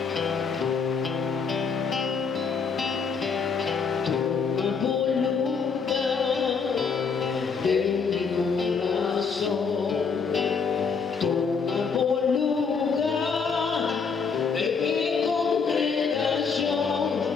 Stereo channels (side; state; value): right; quieter; 5.5 dB